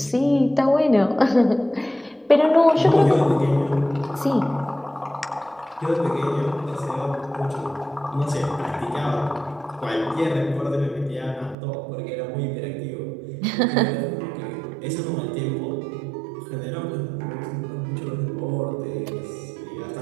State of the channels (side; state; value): left; drops out; at 11.6 s